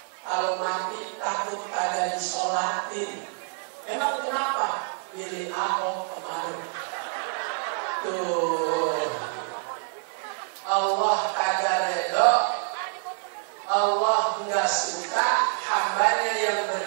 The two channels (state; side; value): silent; left; 60 dB below the other